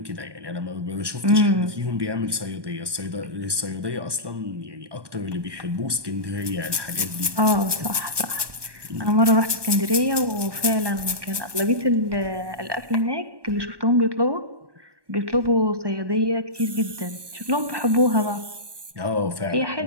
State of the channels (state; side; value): late; left; 1.2 ms